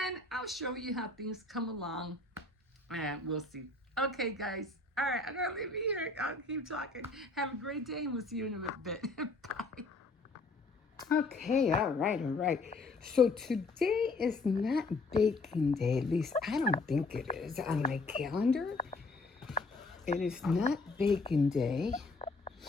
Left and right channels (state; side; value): quieter; right; 3.4 dB